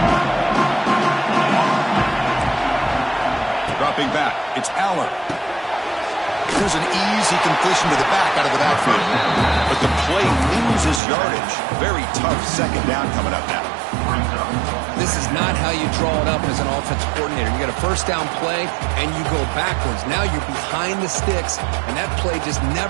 Back. It's Aller. Here's an easy completion to the back out of the backfield. But the play loses yardage. Very tough second down coming up now. This is not how you draw it up as an offensive coordinator. You get a first down play and you go backwards. Now you're behind the sticks, and that play just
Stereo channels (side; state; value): left; drops out; at 11.0 s